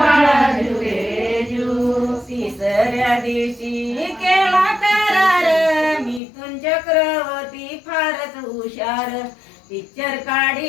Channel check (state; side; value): drops out; right; at 6.2 s